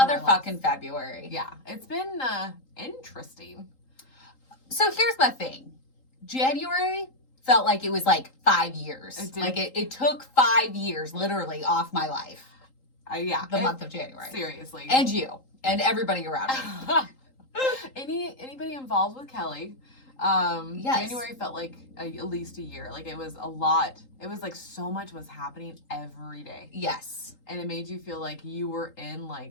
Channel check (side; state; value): right; late; 3.8 ms